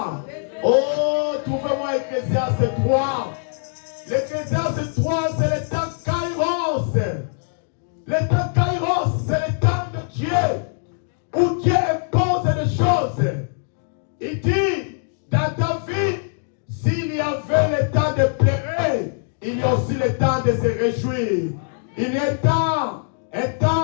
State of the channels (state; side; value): silent; right; digital silence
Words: Oh, trouvez-moi Ecclésiaste 3. L'Ecclésiaste 3, c'est le temps kairos. Le temps kairos, c'est le temps de Dieu, où Dieu impose des choses. Il dit, dans ta vie, s'il y avait le temps de pleurer, il y a aussi le temps de se réjouir. Il y a un